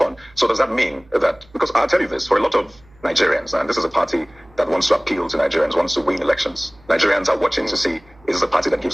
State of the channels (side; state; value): right; noise; hum, 28 dB below the sound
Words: So does that mean that, because I'll tell you this, for a lot of Nigerians, and this is a party that wants to appeal to Nigerians, wants to win elections. Nigerians are watching to see, is this a party that